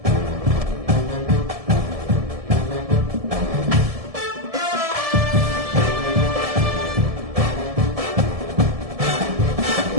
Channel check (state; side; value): late; left; 1.7 ms